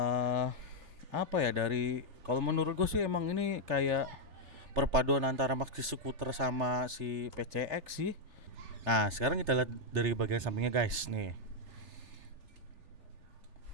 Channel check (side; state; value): left; late; 3.3 ms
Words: Dari kalau menurut gue sih emang ini kayak perpaduan antara maxi scooter sama si PCX sih. Nah sekarang kita lihat dari bagian sampingnya guys nih.